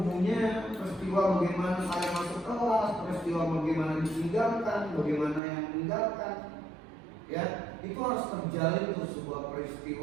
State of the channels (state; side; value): drops out; left; at 5.4 s